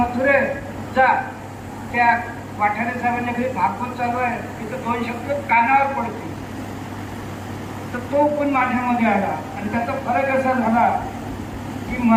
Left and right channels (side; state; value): both; identical; correlation 1.00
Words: जा, त्या वाठारे साहेबांच्या घरी भागवत चालू आहे, तिथं 2 शब्द कानावर पडतील. तर तो पण माझ्यामध्ये आला. आणि त्याचा फरक असा झाला की